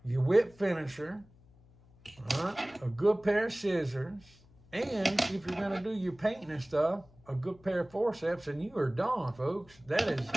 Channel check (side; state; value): left; noise; hum, 27 dB below the sound